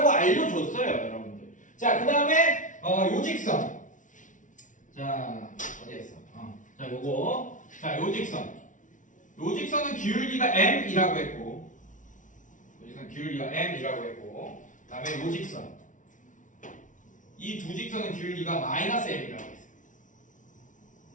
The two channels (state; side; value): late; right; 0.37 ms